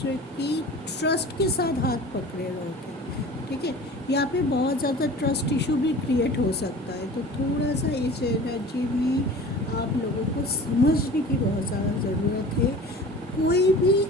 की ट्रस्ट के साथ हाथ पकड़े रहोगे, ठीक है। यहाँ पे बहुत ज़्यादा ट्रस्ट इशू भी क्रिएट हो सकता है, तो थोड़ा सा इस एनर्जी में आप लोगों को समझने की बहुत ज़्यादा ज़रूरत है। कोई भी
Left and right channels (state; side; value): normal; both; correlation 0.40